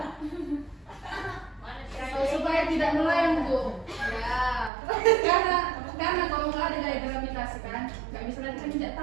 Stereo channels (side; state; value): left; drops out; at 4.7 s